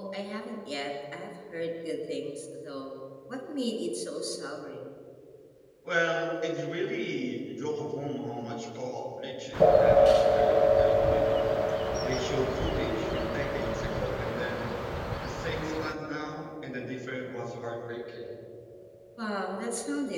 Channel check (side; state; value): both; identical; correlation 1.00